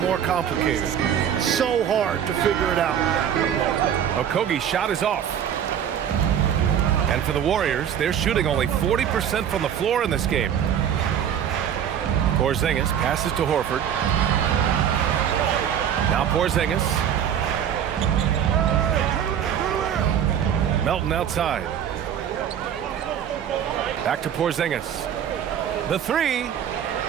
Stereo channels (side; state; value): left; quieter; 9.1 dB